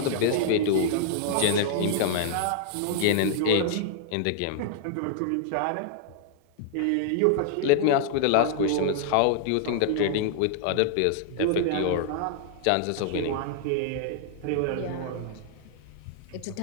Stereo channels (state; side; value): different; both; correlation -0.01